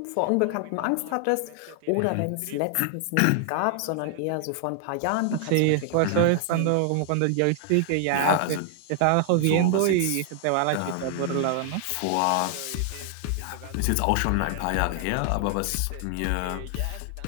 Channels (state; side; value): different; both; correlation 0.00